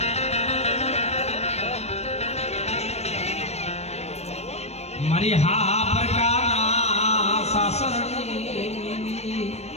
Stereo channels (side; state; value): right; late; 0.31 ms